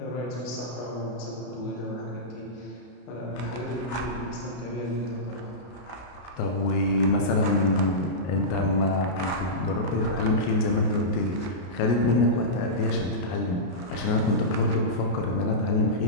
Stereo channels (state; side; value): late; right; 33 ms